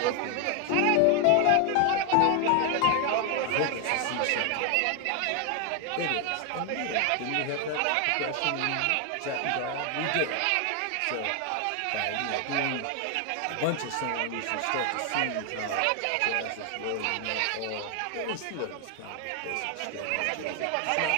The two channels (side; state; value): both; different; correlation 0.00